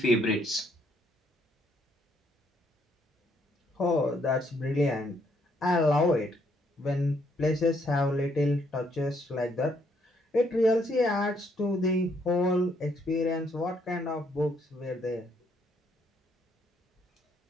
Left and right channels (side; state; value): both; normal; correlation 0.71